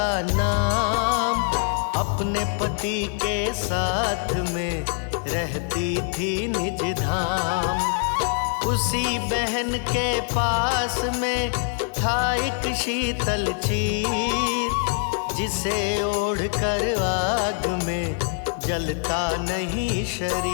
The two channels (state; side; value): silent; right; 55 dB below the other